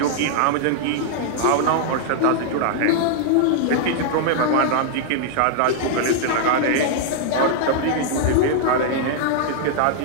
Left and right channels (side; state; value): both; different; correlation -0.01